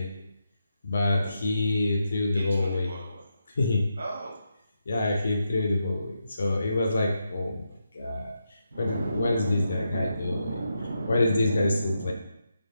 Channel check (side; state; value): both; inverted; correlation -0.84